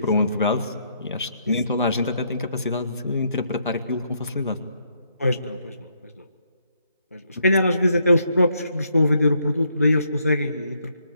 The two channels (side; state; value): both; inverted; correlation -0.73